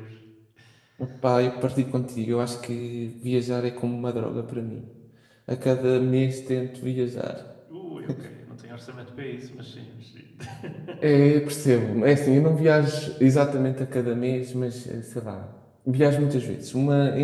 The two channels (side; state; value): both; identical; correlation 1.00